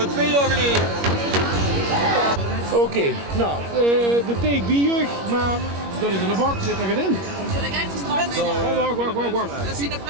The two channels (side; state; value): left; late; 21 ms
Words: 2 jaar geleden. Oké, nou, de take B-jeugd, maar dat is in de bak, zit er geen in. Wacht. Dat is in de